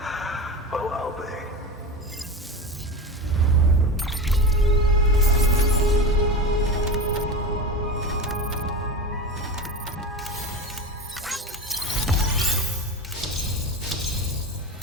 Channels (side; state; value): both; normal; correlation 0.27